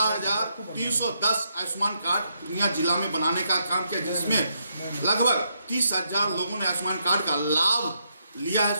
आयुष्मान कार्ड पूर्णिया जिला में बनाने का काम किया, जिसमें लगभग 30,000 लोगों ने आयुष्मान कार्ड का लाभ लिया है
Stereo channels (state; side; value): inverted; both; correlation -0.78